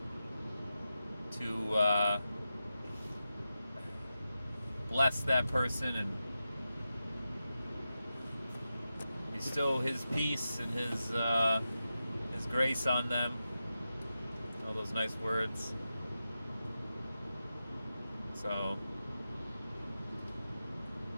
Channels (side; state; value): both; inverted; correlation -0.91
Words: to bless that person and bestow His peace and His grace on them. All those nice words. So